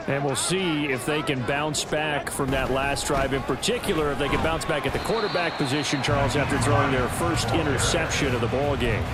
And we'll see if they can bounce back from that last drive. In particular, if they can bounce back at the quarterback position, Charles, after throwing their first interception of the ball game.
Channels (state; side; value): identical; both; correlation 1.00